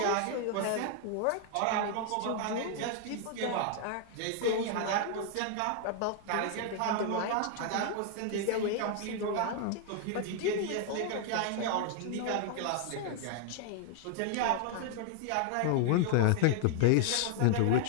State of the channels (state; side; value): different; both; correlation 0.00